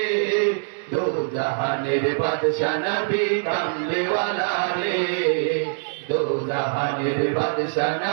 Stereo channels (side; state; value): left; silent; 63 dB below the other